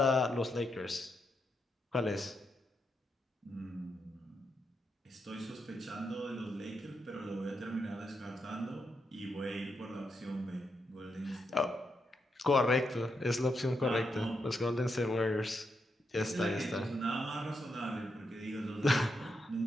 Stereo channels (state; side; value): normal; both; correlation 0.82